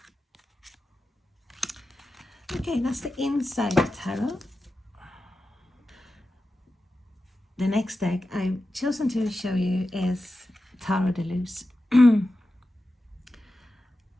Okay, that's the inside tarot. The next deck I've chosen to show you is Tarot de Luz.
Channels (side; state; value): both; normal; correlation 0.92